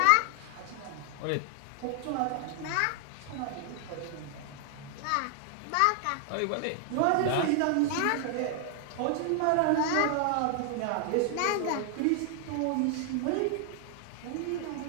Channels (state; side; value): different; both; correlation 0.00